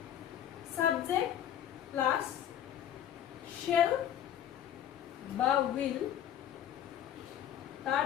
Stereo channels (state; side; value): quieter; right; 10.4 dB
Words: subject plus shall বা will তাৰ